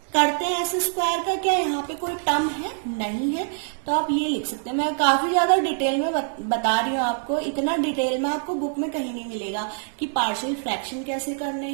करते हैं s² का, क्या यहाँ पे कोई टर्म है, नहीं है, तो आप ये लिख सकते हैं। मैं काफी ज्यादा डिटेल में बता रही हूँ आपको, इतना डिटेल में आपको बुक में कहीं नहीं मिलेगा कि पार्शियल फ्रैक्शन कैसे करने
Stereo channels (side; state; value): left; silent; digital silence